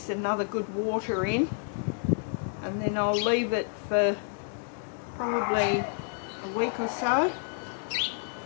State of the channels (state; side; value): silent; right; 58 dB below the other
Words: another good water in, and then I'll leave it for probably a week or so.